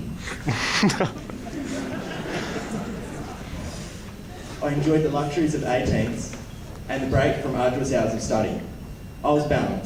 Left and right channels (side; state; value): both; identical; correlation 1.00